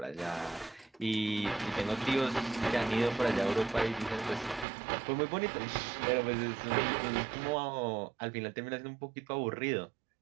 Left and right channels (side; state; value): left; drops out; at 4.7 s